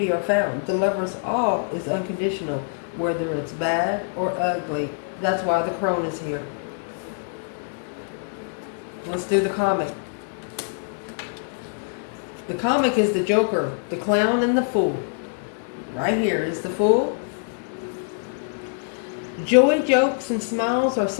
are found. The lover's all is unconditional, whether it's bad or ugly. That's why the crone is here. Let's do the comic. The comic is the Joker, the clown, and the fool. Right here is the fool. Joy, jokes, and smiles are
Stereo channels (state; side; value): silent; right; digital silence